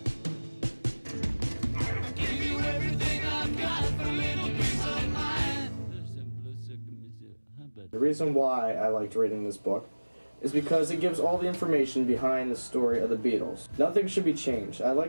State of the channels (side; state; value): both; inverted; correlation -1.00